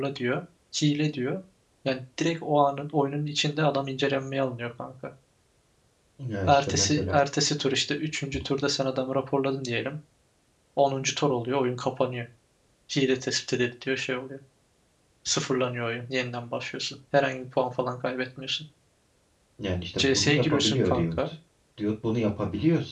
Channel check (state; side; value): identical; both; correlation 1.00